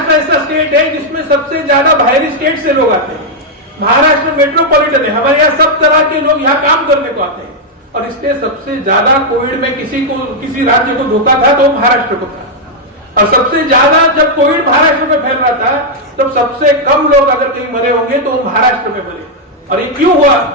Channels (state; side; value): normal; both; correlation -0.03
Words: ऐसा स्टेट है जिसमें सबसे ज्यादा बाहरी स्टेट से लोग आते हैं। महाराष्ट्र मेट्रोपॉलिटन है, हमारे यहाँ सब तरह के लोग यहाँ काम करने को आते हैं। और इसलिए सबसे ज्यादा कोविड में किसी राज्य को धोखा था तो महाराष्ट्र को था। और सबसे ज्यादा जब कोविड महाराष्ट्र में फैल रहा था तब सबसे कम लोग अगर कहीं मरे होंगे तो वो महाराष्ट्र में मरे। और ये क्यों हुआ,